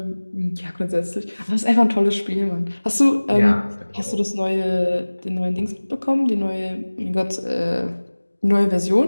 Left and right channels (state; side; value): inverted; both; correlation -1.00